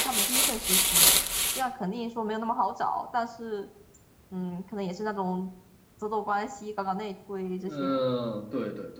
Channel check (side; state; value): both; identical; correlation 1.00